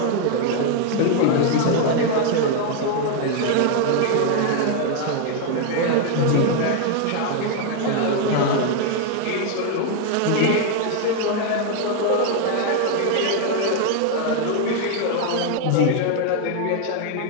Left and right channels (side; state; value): both; different; correlation 0.01